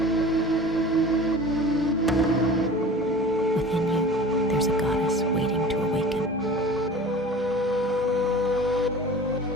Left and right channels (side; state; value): both; normal; correlation 0.40